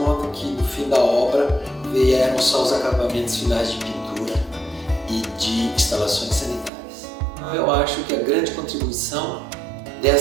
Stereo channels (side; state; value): left; drops out; at 6.7 s